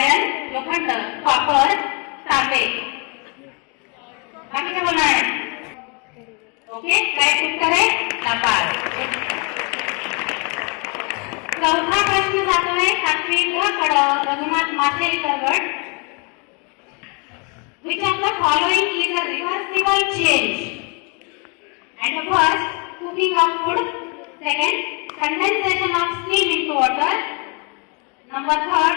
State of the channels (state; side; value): quieter; right; 33.3 dB